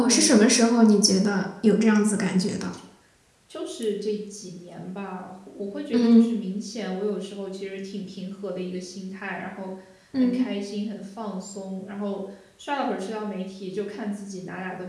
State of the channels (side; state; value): both; identical; correlation 1.00